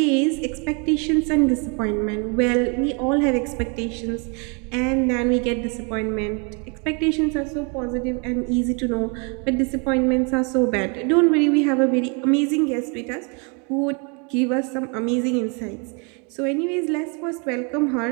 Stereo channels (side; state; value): left; quieter; 34.6 dB